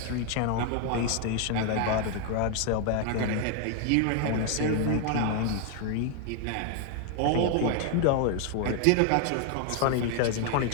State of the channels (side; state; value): both; different; correlation 0.01